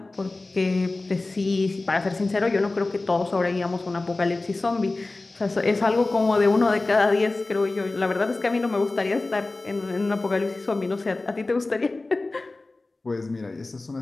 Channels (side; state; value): right; quieter; 3.2 dB